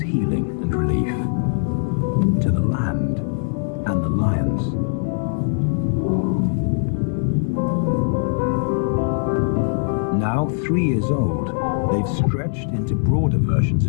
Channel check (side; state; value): right; silent; digital silence